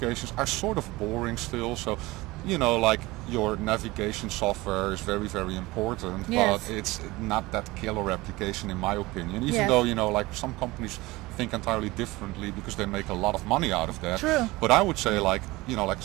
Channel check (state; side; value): quieter; left; 20.8 dB